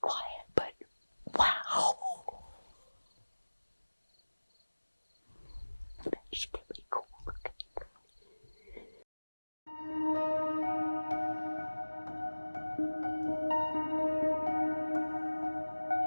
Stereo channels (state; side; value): inverted; both; correlation -1.00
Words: But wow. That's really cool looking.